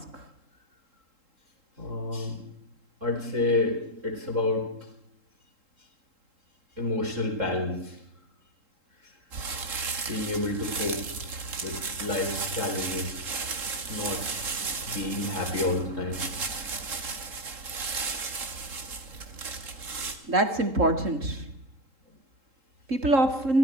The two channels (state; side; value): late; left; 3.7 ms